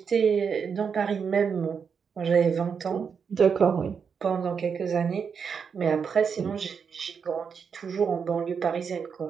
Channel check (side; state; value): left; quieter; 6.4 dB